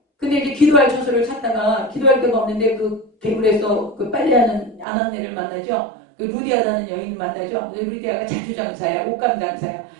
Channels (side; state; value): left; drops out; at 4.9 s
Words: 근데 이제 기도할 처소를 찾다가 기도할 데가 없는데 그 개굴에서 그 빨래하는 아낙네를 만나죠. 그 루디아라는 여인을 만나죠. 루디아가 자주장사야, 옷감장사야.